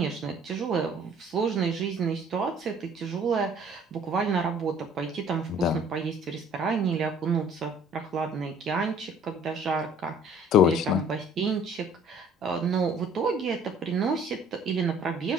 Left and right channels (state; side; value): normal; both; correlation 0.54